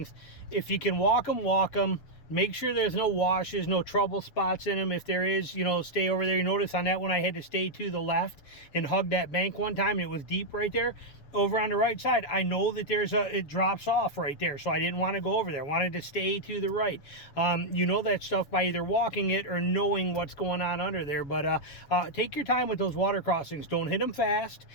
if you can walk them. Make sure there's no washes, no trouble spots in them. If there is, you know, stay over there. You notice on that one, I had to stay to the left and hug that bank one time. It was deep right there. Over on the right side, I know that it drops off right there, so I didn't want to go over there. I wanted to stay to the right. You know that stuff by either walking it or knowing what's going on under there. But take your time with those water crossings. Don't hit them fast.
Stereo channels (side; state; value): right; late; 7.3 ms